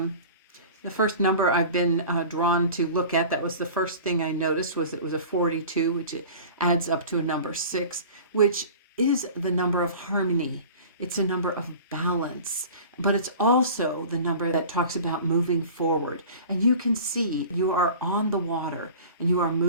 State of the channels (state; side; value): inverted; both; correlation -0.40